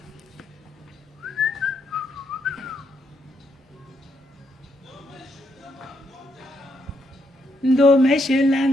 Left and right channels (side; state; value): both; normal; correlation 0.77